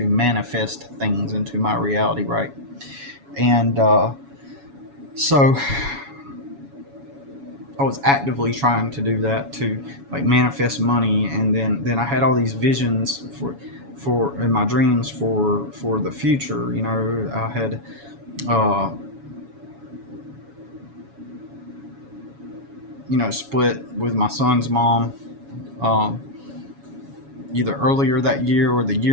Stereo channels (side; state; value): left; late; 7.1 ms